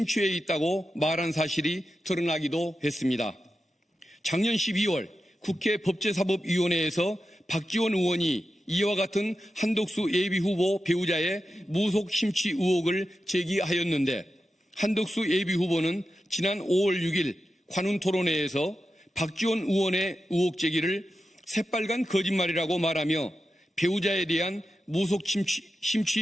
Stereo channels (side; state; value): both; normal; correlation 0.90